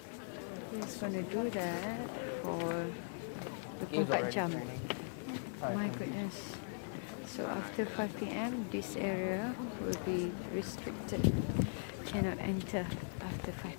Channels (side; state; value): right; silent; digital silence